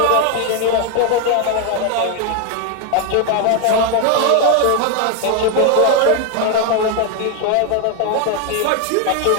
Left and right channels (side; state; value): both; different; correlation 0.01